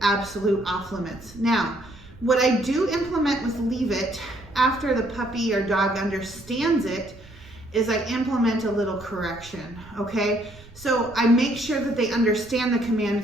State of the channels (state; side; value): noise; right; rumble, 22 dB below the sound